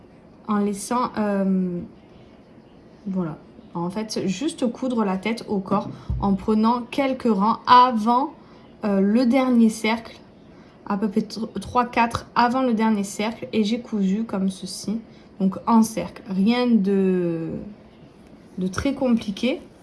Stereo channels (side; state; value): both; identical; correlation 1.00